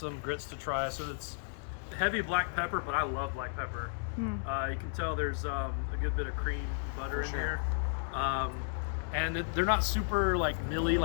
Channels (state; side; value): silent; right; digital silence